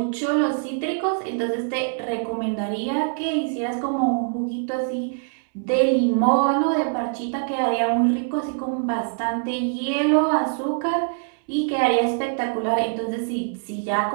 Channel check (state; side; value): silent; left; 62 dB below the other